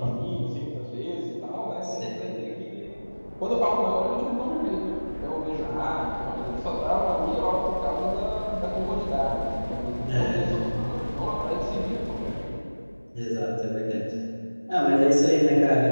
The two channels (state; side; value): inverted; both; correlation -1.00